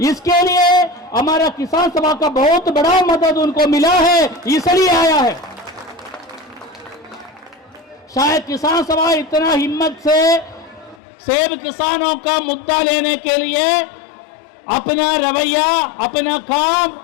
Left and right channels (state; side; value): drops out; right; at 11.0 s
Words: इसके लिए हमारा किसान सभा का बहुत बड़ा मदद उनको मिला है, इसलिए आया है। शायद किसान सभा इतना हिम्मत से सेब किसानों का मुद्दा लेने के लिए अपना रवैया, अपना